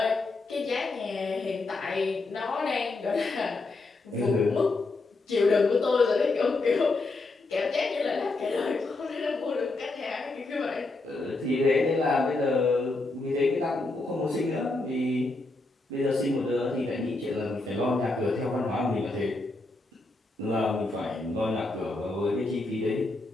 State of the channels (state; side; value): quieter; right; 3.2 dB